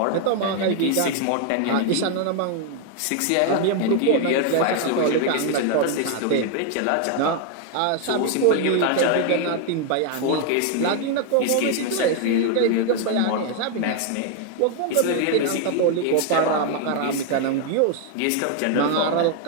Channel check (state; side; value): different; both; correlation 0.00